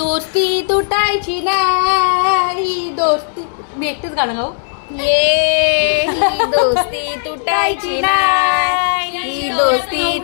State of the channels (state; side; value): silent; right; digital silence